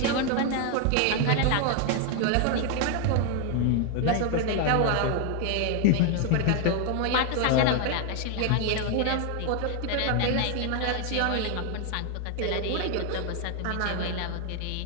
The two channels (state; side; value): different; both; correlation 0.00